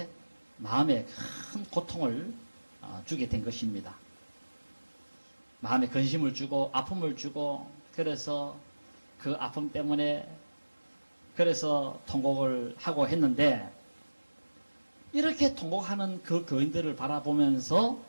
마음에 큰 고통을 주게 된 것입니다. 마음에 근심을 주고 아픔을 주고, 그래서 그 아픔 때문에 그래서 통곡을 하고 했는데, 이렇게 통곡하는 그 교인들을 바라보면서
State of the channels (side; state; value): both; inverted; correlation -1.00